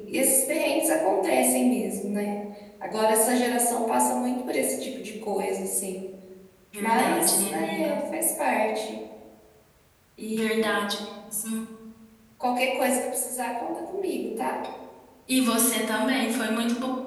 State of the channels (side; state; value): both; identical; correlation 1.00